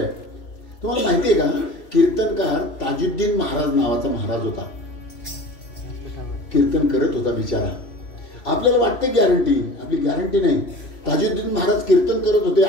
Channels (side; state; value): right; late; 3.0 ms